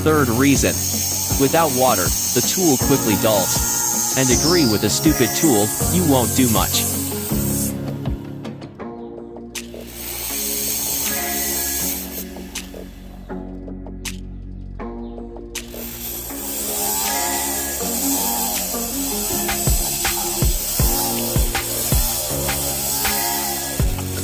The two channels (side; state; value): both; identical; correlation 1.00